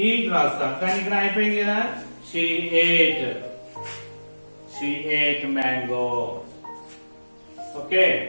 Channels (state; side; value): inverted; both; correlation -1.00